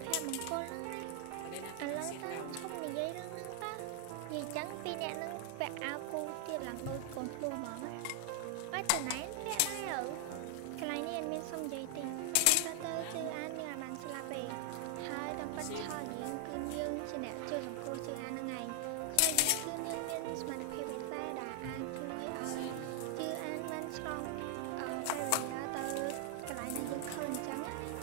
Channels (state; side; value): different; both; correlation 0.00